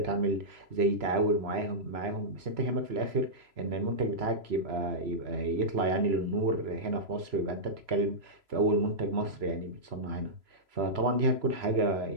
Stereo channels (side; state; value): left; late; 3.0 ms